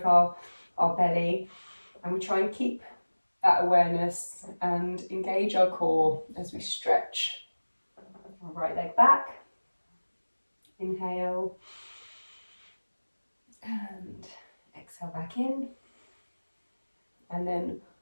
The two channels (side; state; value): both; inverted; correlation -1.00